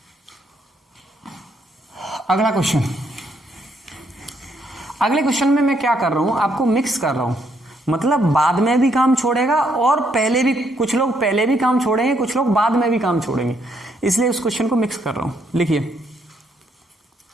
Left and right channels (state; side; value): normal; both; correlation 0.73